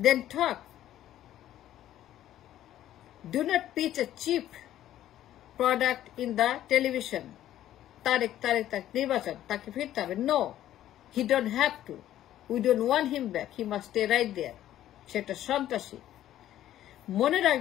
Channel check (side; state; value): right; quieter; 12.6 dB